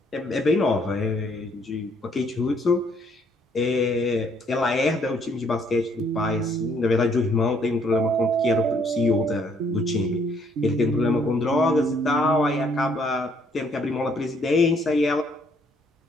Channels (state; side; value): normal; both; correlation 0.67